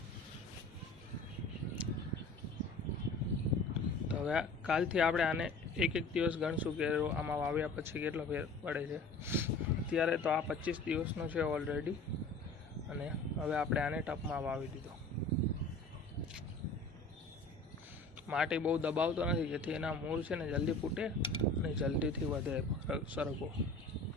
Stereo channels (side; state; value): right; quieter; 3.3 dB